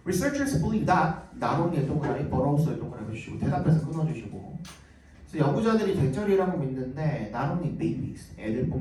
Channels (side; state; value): both; identical; correlation 1.00